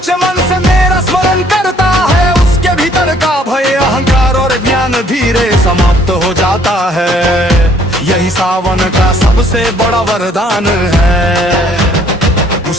मन से मेरा स्मरण करता है, उसके भीतर का भय, अहंकार और ज्ञान धीरे समाप्त हो जाता है। यही सावन का सबसे बड़ा वरदान है।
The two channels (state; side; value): normal; both; correlation 0.61